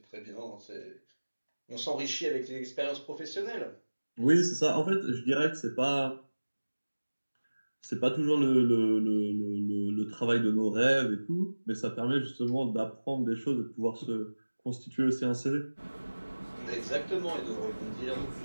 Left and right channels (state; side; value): inverted; both; correlation -1.00